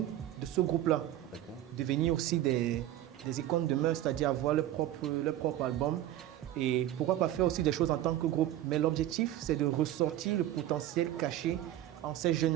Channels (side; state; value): left; quieter; 13.1 dB